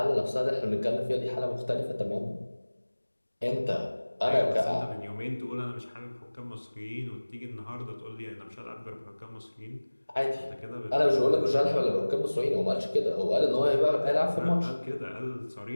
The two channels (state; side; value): inverted; both; correlation -1.00